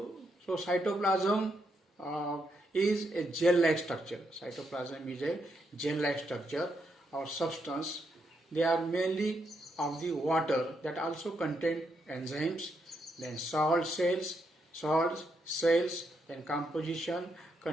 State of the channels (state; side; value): normal; both; correlation 0.79